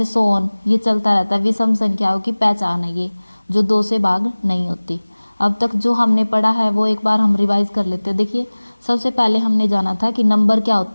सो ऑन, ये चलता रहता है। विषम संख्याओं की पहचान है ये, जो 2 से भाग नहीं होती। अब तक जो हमने पढ़ा है वो एक बार हम रिवाइज कर लेते हैं। देखिए सबसे पहले हमने जाना था कि नंबर क्या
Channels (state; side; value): inverted; both; correlation -1.00